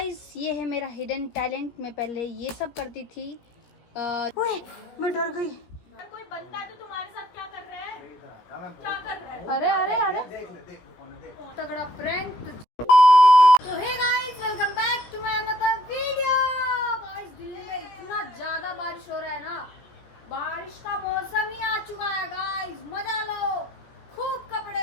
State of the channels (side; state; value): right; late; 17 ms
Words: ये है मेरा हिडन टैलेंट। मैं पहले ये सब करती थी। ओए मैं डर गई। कोई बंदा है तो तुम्हारे साथ क्या कर रहा है? क्या कर रहा है? अरे अरे अरे तगड़ा प्रैंक। तो hey guys welcome back to my another video. Guys Delhi में इतना ज्यादा बारिश हो रहा है ना, बारिश का मौसम ही आ चुका है। गाइस मजा लो, खूब